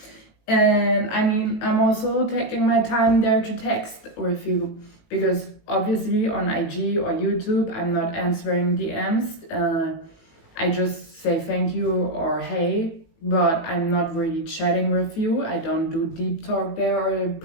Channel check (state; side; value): late; right; 19 ms